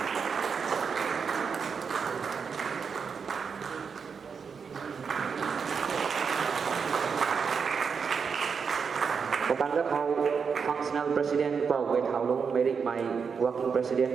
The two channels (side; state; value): left; quieter; 6.0 dB